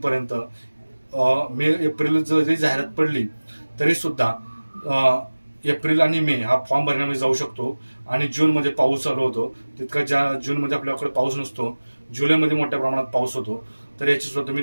एप्रिल जरी जाहिरात पडली तरी सुद्धा एप्रिल आणि मे हा फॉर्म भरण्यामध्ये जाऊ शकतो आणि जूनमध्ये पाऊस चालू होतो, तितका ज्या जूनमध्ये आपल्याकडे पाऊस नसतो, जुलैमध्ये मोठ्या प्रमाणात पाऊस होतो, तर याची सुद्धा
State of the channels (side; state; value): both; inverted; correlation -1.00